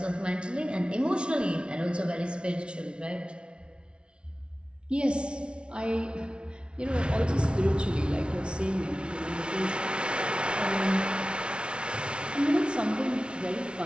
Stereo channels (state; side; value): late; left; 0.057 ms